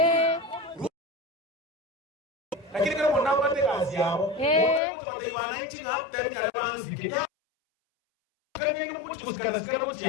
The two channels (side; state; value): right; drops out; at 4.8 s